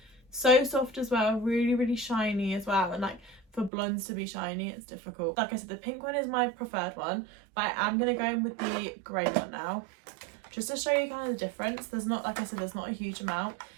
So soft as well, really shiny as well. And like for blondes to be shiny, it's difficult. Like I said, the pink one is my preferred one, but I am going to go in with the grey one now, just to show you kind of the difference. There's not, like I said, there's not a huge amount,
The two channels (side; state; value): left; drops out; at 3.7 s